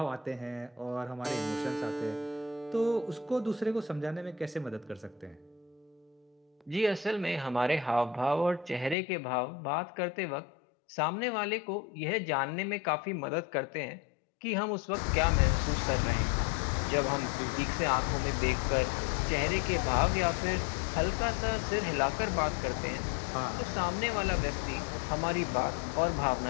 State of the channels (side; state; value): right; drops out; at 9.0 s